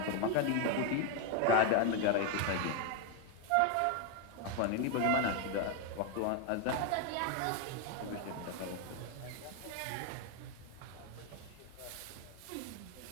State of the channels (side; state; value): both; different; correlation 0.01